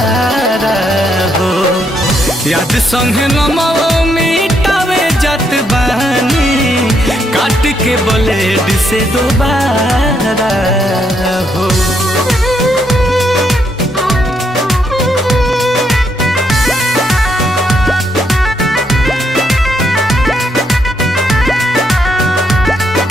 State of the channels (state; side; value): normal; both; correlation 0.75